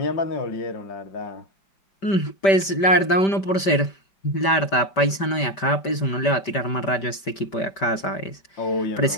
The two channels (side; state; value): right; late; 5.1 ms